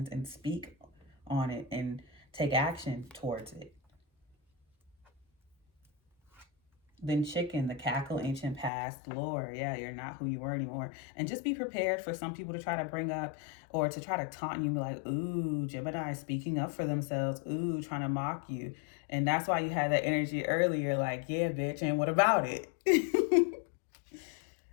and speak on it and take action towards it. Then Chicken, the cackle, ancient past, lore. Yeah, you're not who you were anymore. And just be prepared for some people to try to bring up or to try to taunt you and be like, ooh, Gemini speaking up for themselves. Ooh, trying to mock you. And that's why you had that energy earlier, like, yeah, bitch, and what about it?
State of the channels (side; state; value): right; drops out; at 8.7 s